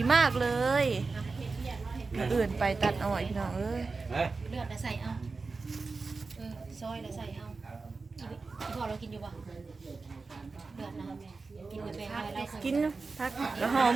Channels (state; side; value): quieter; left; 4.1 dB